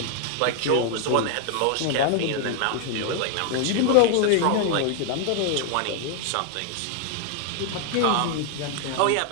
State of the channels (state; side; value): different; both; correlation 0.00